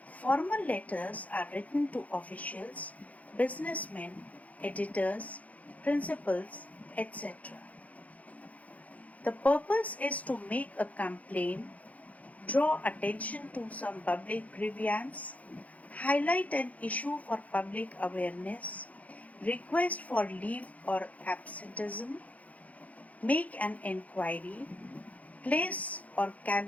formal letters are written to officials, businessmen, editors, principals, etc. The purpose is to make a complaint, draw attention to some public grievance, highlight an issue for public awareness, request for leave or absenteeism, make an enquiry, place or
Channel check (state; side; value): late; right; 0.071 ms